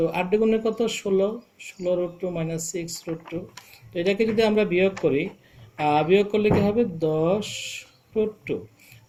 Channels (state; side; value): identical; both; correlation 1.00